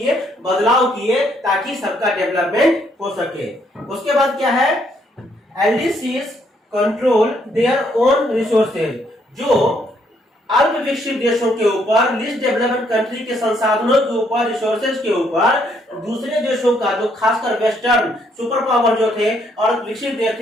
बदलाव किए ताकि सबका डेवलपमेंट हो सके। उसके बाद क्या है? LDCs control their own resources, जो अल्प विकसित देशों के ऊपर, लीस्ट डेवलप्ड कंट्री के संसाधनों के ऊपर, रिसोर्सेज के ऊपर दूसरे देशों का, जो खासकर वेस्टर्न सुपर पावर जो थे और विकसित देश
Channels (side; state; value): both; normal; correlation 0.70